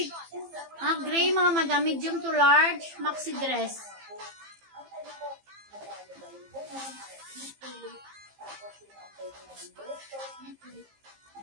Gray mga madam. Medium to large. Maxi dress.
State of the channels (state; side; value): late; left; 15 ms